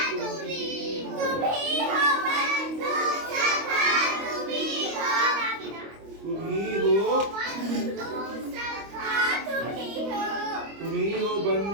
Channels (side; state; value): left; late; 25 ms